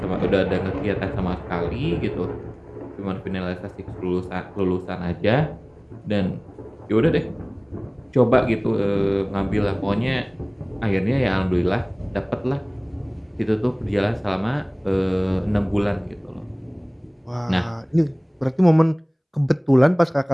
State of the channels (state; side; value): identical; both; correlation 1.00